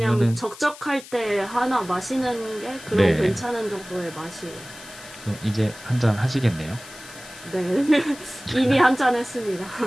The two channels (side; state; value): left; noise; hiss, 17 dB below the sound